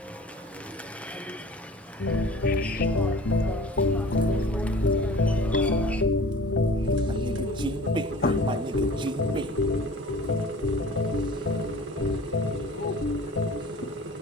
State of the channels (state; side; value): normal; both; correlation 0.44